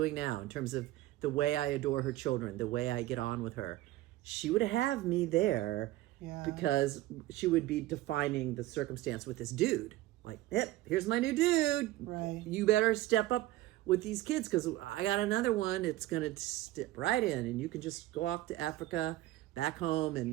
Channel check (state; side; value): quieter; left; 16.3 dB